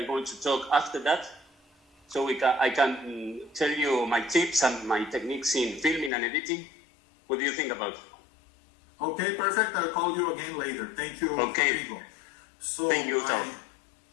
going to talk after that. So I can tell you my tips and my techniques in filming and editing. What do you think about it? Okay, perfect. I'll call you again later. Thank you, okay. Rodrigo. So thank you, Tom.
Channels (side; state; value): right; drops out; at 6.1 s